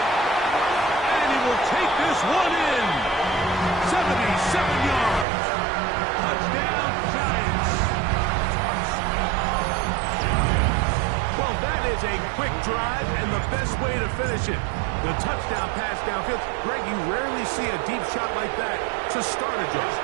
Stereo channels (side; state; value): left; drops out; at 5.2 s